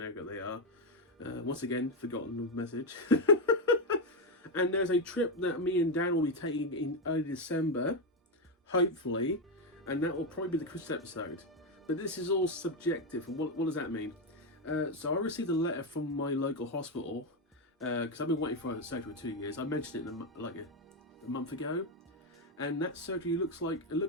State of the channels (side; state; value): both; normal; correlation 0.07